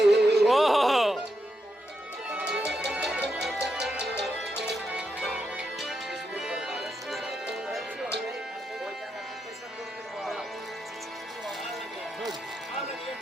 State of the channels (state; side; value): normal; both; correlation 0.84